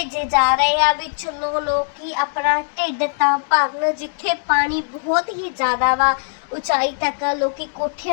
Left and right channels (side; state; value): right; silent; digital silence